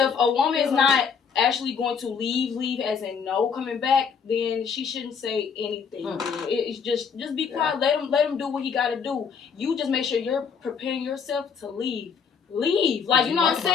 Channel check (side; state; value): right; quieter; 6.4 dB